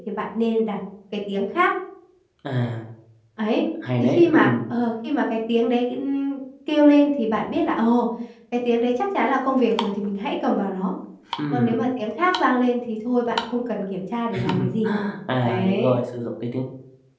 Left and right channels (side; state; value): both; identical; correlation 1.00